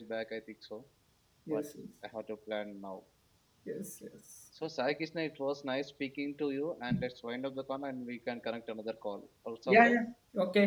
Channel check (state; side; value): identical; both; correlation 1.00